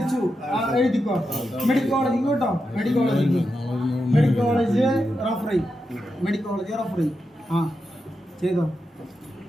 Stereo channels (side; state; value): both; normal; correlation 0.87